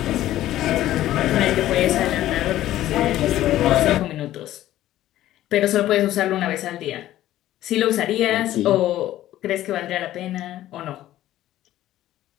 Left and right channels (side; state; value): right; quieter; 13.9 dB